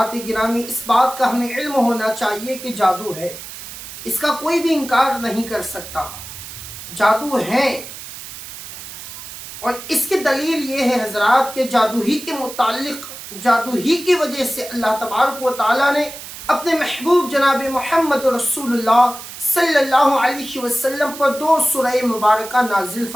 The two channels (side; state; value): right; noise; hiss, 12 dB below the sound